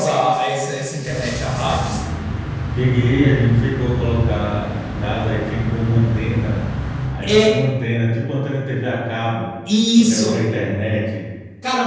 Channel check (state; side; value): identical; both; correlation 1.00